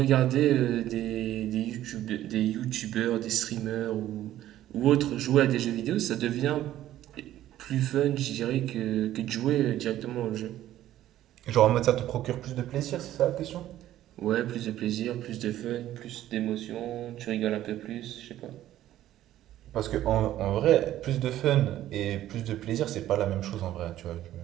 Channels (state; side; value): quieter; left; 13.2 dB